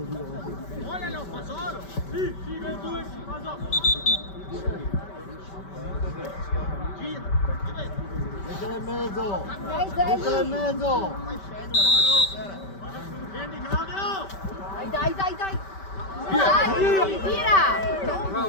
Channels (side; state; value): right; late; 5.2 ms